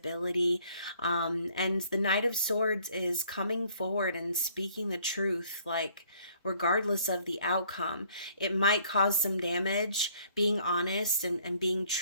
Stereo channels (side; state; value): both; inverted; correlation -0.61